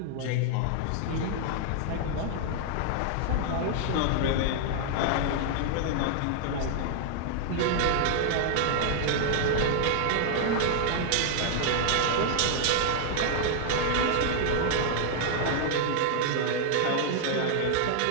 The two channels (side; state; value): both; different; correlation -0.01